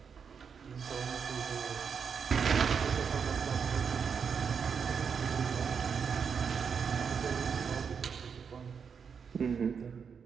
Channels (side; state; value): left; quieter; 6.4 dB